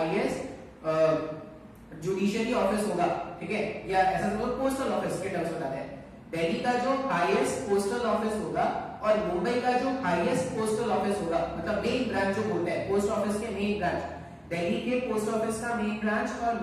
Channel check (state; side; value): identical; both; correlation 1.00